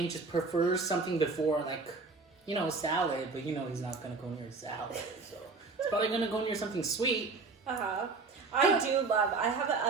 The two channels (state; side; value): quieter; left; 4.1 dB